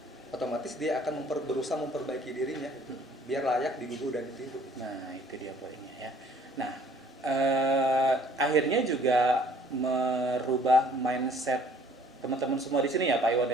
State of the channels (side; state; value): both; normal; correlation 0.57